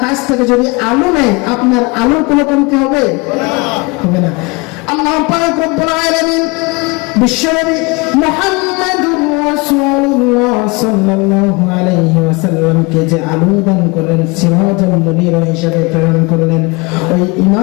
কাছ থেকে যদি আলো নেয়, আপনার আলোর কোনো কমতি হবে? হবে না। আল্লাহ পাক রব্বুল আলামিন বিশ্বনবী মুহাম্মদুর রাসূলুল্লাহ সাল্লাল্লাহু আলাইহি ওয়াসাল্লামকে যে আলো দান করলেন, সিরাজাল মুনির হিসেবে প্রেরণ করলেন, ওই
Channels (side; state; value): right; quieter; 27.1 dB